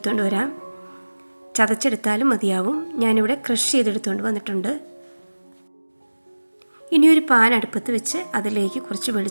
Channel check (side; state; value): both; inverted; correlation -1.00